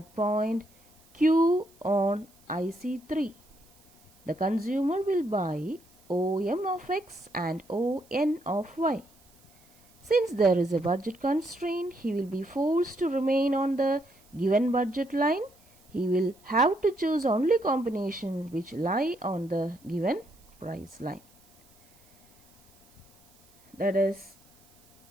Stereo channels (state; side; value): noise; right; hiss, 30 dB below the sound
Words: point Q on IC3. The consumer will buy OM of X and ON of Y. Since there is a budget constraint, he will be forced to remain on the given budget line. He will have to choose only combinations which lie on the given price line. That is,